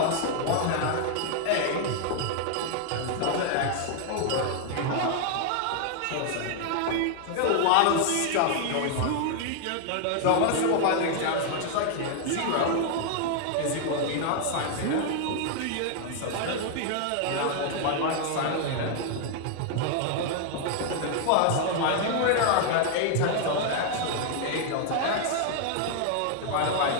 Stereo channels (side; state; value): both; different; correlation 0.00